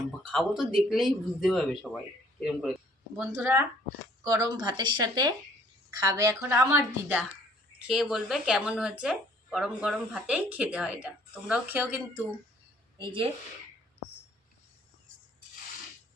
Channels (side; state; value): both; normal; correlation 0.59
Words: খাবো তো দেখলেই বুঝতে পারবে সবাই এরকম করে। বন্ধুরা গরম ভাতের সাথে খাবে এখন আমার দিদা, খেয়ে বলবে কেমন হয়েছে। গরম গরম ভাতেই খেতে হয় এটা, তোমরাও খেও কিন্তু। এই যে